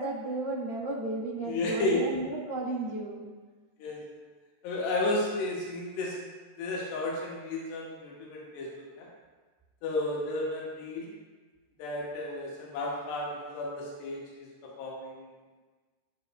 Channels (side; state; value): right; late; 14 ms